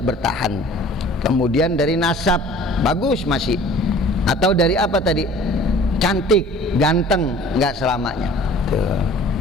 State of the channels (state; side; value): normal; both; correlation 0.48